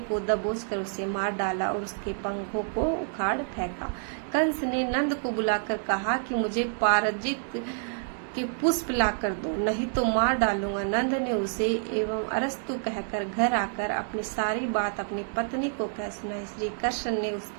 को दबोचकर उसे मार डाला और उसके पंखों को उखाड़ फेंका। कंस ने नंद को बुलाकर कहा कि मुझे पारजित के पुष्प लाकर दो, नहीं तो मार डालूंगा। नंद ने उसे एवं अरस्तु कहकर घर आकर अपनी सारी बात अपनी पत्नी को कह सुनाई। श्री कृष्ण ने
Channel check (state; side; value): silent; left; digital silence